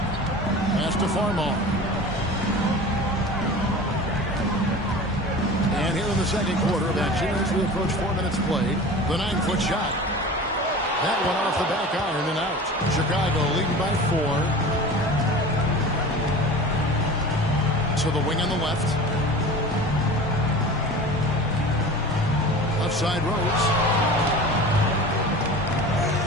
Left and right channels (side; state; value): both; normal; correlation 0.36